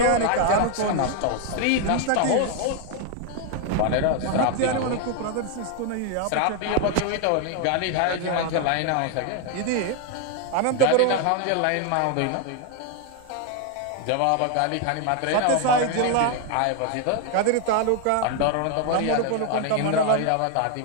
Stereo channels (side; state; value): both; different; correlation 0.01